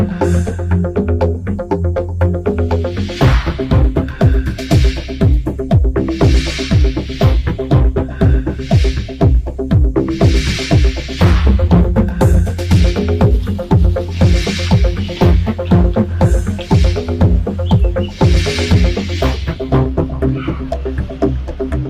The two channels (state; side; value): identical; both; correlation 1.00